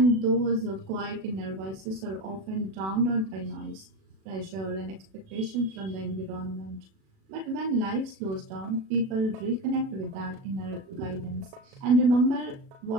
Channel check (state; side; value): late; left; 37 ms